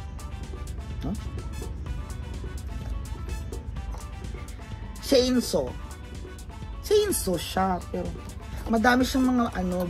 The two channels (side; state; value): both; identical; correlation 1.00